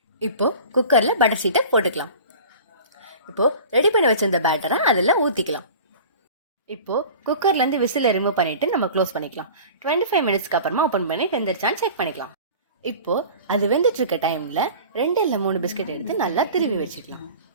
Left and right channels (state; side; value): inverted; both; correlation -0.39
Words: இப்போ குக்கரில் பட்டர் ஷீட்டை போட்டுக்கலாம். இப்போ ரெடி பண்ணி வச்சிருந்த பேட்டரை அதில் ஊற்றிக்கலாம். இப்போ குக்கர்லேருந்து விசிலை ரிமூவ் பண்ணிட்டு நம்ம க்ளோஸ் பண்ணிக்கலாம். 25 மினிட்ஸ்க்கு அப்புறமா ஓப்பன் பண்ணி வெந்துருச்சான்னு செக் பண்ணிக்கலாம். இப்போ அது வெந்துட்டு இருக்க டைமில் 2 இல்லை 3 பிஸ்கெட் எடுத்து நல்லா திருவி வச்சுக்கலாம்.